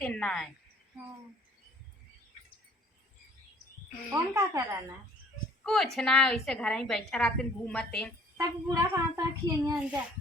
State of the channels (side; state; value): both; normal; correlation 0.55